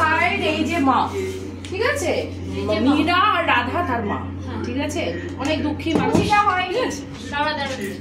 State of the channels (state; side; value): identical; both; correlation 1.00